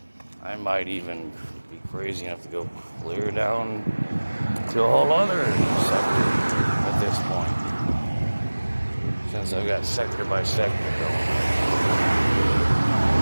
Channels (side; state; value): both; inverted; correlation -1.00